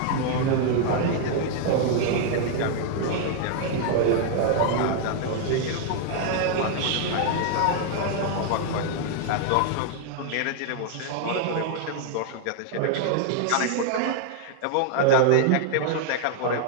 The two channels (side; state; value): both; different; correlation 0.00